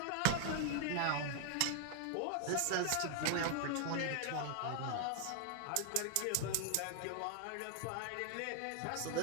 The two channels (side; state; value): both; different; correlation 0.00